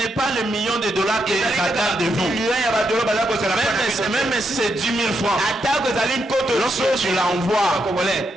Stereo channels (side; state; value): both; normal; correlation 0.81